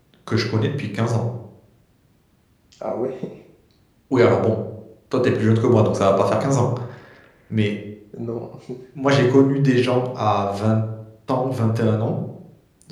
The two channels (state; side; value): identical; both; correlation 1.00